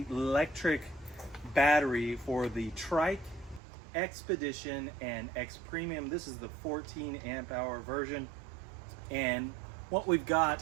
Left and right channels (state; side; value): drops out; left; at 3.6 s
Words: Lectric battery for the Trike, XPedition, and XPremium. This is the 14 amp hour version. And what we've